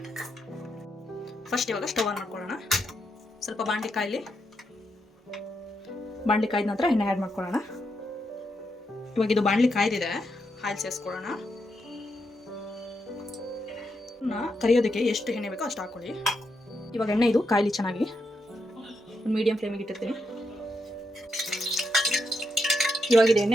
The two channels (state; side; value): normal; both; correlation 0.82